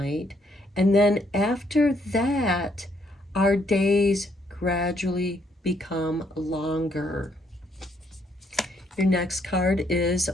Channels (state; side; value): normal; both; correlation 0.71